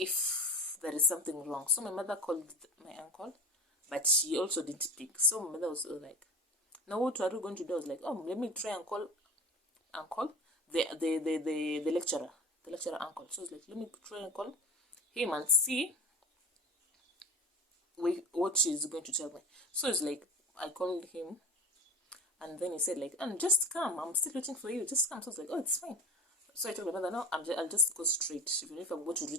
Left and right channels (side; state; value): both; normal; correlation 0.33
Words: there is something wrong. So my mother called my uncle, but she also didn't pick. So my mother was like, now what are we going to do? I was like, oh, let me try and call uncle, the lecturer uncle. So I was like, let me try and call him and see what she's going to tell me. So it's like, I called him, and then he said like, just come, I'm still waiting for you, just come. So I was like, oh, it's fine. So I told my mother, no, I'll just go straight. Even if I'm going to